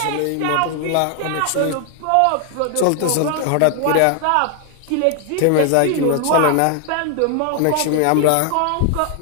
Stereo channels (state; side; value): different; both; correlation 0.00